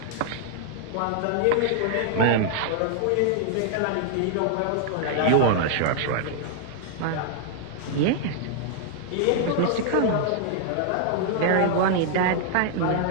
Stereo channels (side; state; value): both; different; correlation 0.00